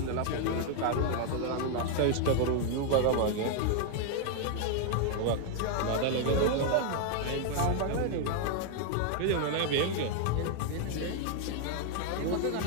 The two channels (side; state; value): both; different; correlation 0.00